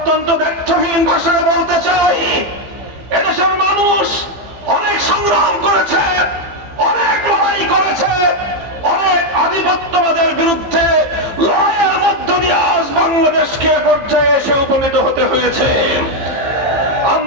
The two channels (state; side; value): late; left; 15 ms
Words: দ্ব্যর্থহীন ভাষায় বলতে চাই, এদেশের মানুষ অনেক সংগ্রাম করেছে, অনেক লড়াই করেছে, অনেক আধিপত্যবাদের বিরুদ্ধে লড়াইয়ের মধ্য দিয়ে আজ বাংলাদেশকে পর্যায়ে এসে উপনীত হতে হয়েছে।